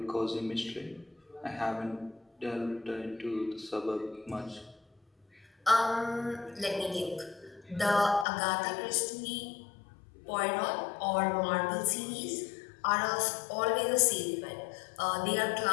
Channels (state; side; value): drops out; right; at 8.2 s